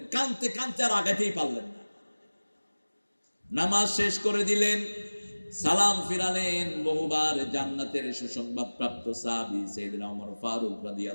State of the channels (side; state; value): both; inverted; correlation -1.00